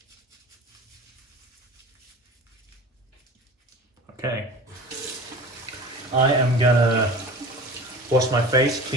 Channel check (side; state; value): both; normal; correlation 0.38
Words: Okay, I am gonna wash my face,